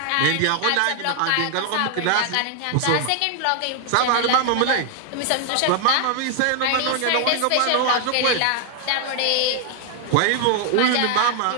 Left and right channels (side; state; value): both; different; correlation 0.00